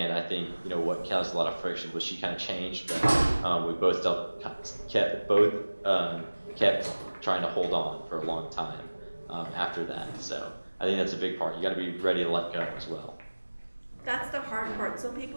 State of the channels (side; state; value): both; inverted; correlation -1.00